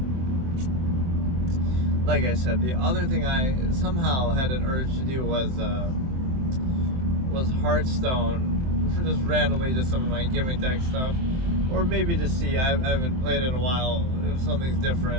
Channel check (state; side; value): late; left; 23 ms